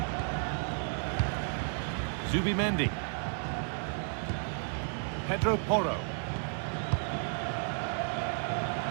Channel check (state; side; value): silent; left; 56 dB below the other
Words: Zubimendi. Pedro Porro.